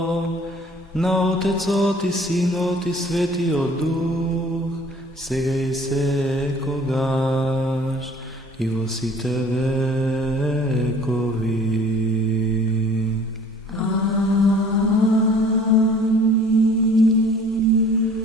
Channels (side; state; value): both; normal; correlation 0.51